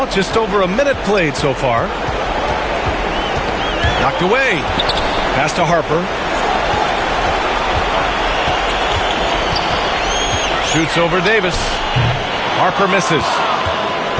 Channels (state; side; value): identical; both; correlation 1.00